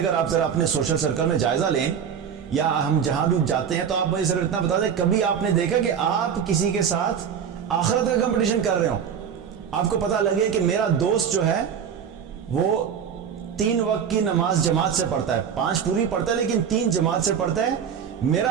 آپ ذرا اپنے سوشل سرکل میں جائزہ لیں یا ہم جہاں بھی جاتے ہیں تو آپ مجھے صرف اتنا بتا دیں، کبھی آپ نے دیکھا کہ آپ کسی کے ساتھ آخرت کا کمپٹیشن کر رہے ہو؟ آپ کو پتہ لگے کہ میرا دوست جو ہے وہ 3 وقت کی نماز جماعت سے پڑھتا ہے، 5 پوری پڑھتا ہے لیکن 3 جماعت سے پڑھتا ہے،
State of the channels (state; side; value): quieter; left; 7.8 dB